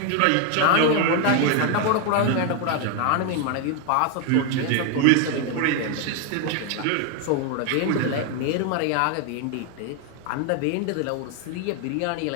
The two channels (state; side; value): different; both; correlation 0.01